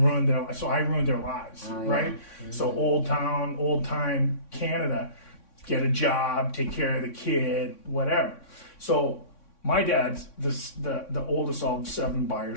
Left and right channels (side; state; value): right; late; 3.6 ms